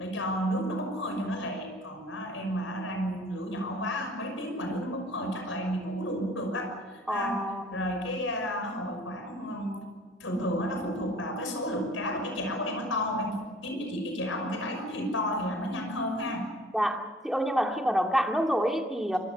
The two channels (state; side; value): normal; both; correlation 0.53